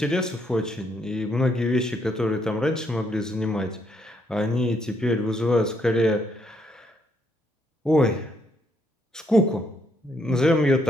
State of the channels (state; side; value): normal; both; correlation 0.73